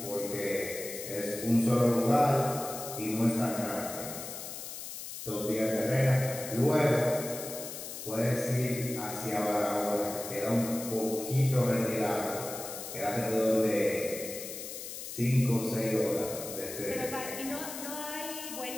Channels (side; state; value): left; noise; hiss, 9 dB below the sound